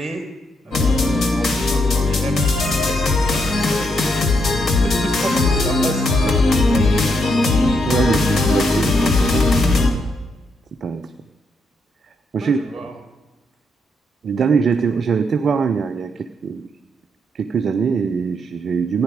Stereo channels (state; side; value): normal; both; correlation 0.77